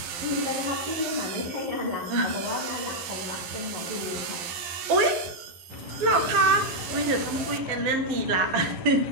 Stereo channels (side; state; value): left; late; 12 ms